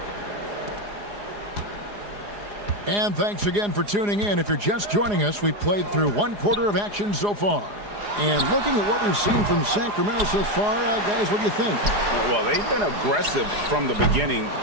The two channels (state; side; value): late; left; 4.9 ms